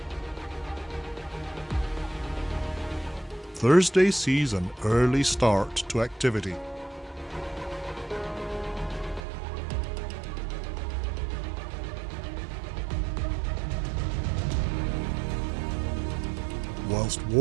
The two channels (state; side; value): drops out; left; at 9.2 s